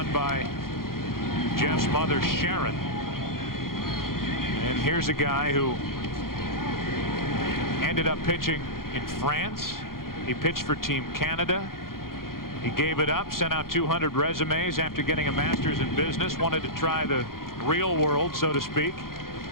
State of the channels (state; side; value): late; right; 0.92 ms